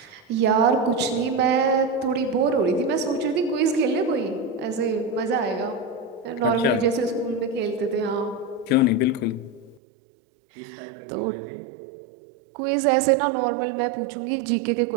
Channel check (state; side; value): drops out; left; at 9.8 s